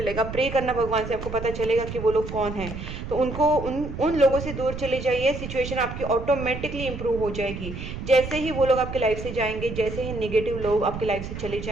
प्रे करना भगवान से, आपको पता चलेगा कि वो लोग कौन हैं। तो उनको उन लोगों से दूर चले जाइए, सिचुएशन आपकी ऑटोमेटिकली इंप्रूव हो जाएगी। जैसे ही वो लोग आपके लाइफ से जाएंगे, जैसे ही नेगेटिव लोग आपकी लाइफ से चले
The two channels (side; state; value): right; noise; rumble, 8 dB below the sound